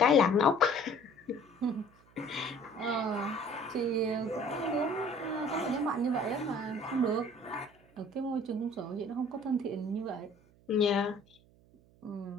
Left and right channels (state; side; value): noise; right; hum, 29 dB below the sound